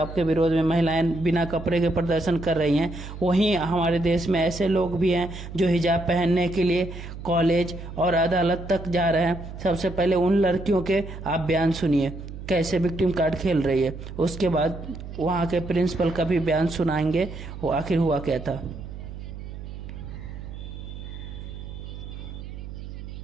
के विरोध में महिलाएं बिना कपड़े के प्रदर्शन कर रही हैं, वहीं हमारे देश में ऐसे लोग भी हैं जो हिजाब पहनने के लिए कॉलेज और अदालत तक जा रहे हैं। सबसे पहले उन लड़कियों के आप बयान सुनिए कैसे विक्टिम कार्ड खेल रही है, उसके बाद वहाँ के प्रिंसिपल का भी बयान सुनाएंगे वो आखिर हुआ क्या था।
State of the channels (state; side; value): noise; right; hum, 11 dB below the sound